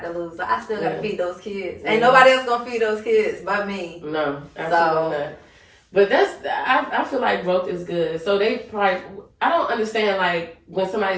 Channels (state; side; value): identical; both; correlation 1.00